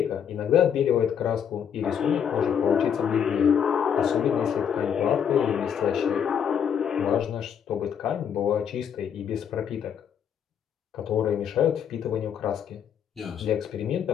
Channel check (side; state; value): right; quieter; 8.2 dB